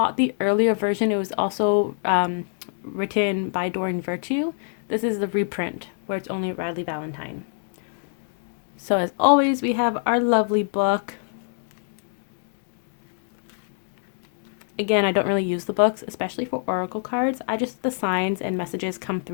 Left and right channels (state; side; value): silent; right; digital silence